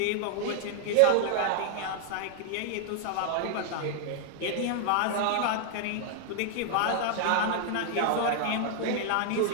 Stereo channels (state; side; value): different; both; correlation 0.00